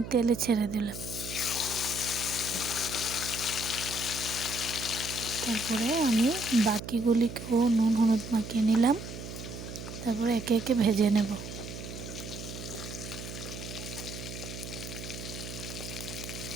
তেলে ছেড়ে দিলাম। তারপরে আমি বাকিগুলিকেও নুন হলুদ মাখিয়ে নিলাম। তারপরে একে একে ভেজে নেব।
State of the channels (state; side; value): noise; right; hum, 9 dB below the sound